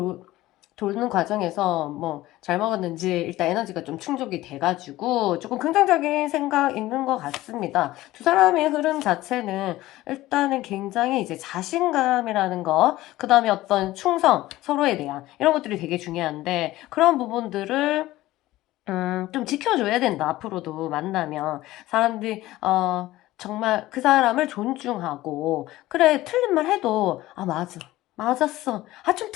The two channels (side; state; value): right; quieter; 16.7 dB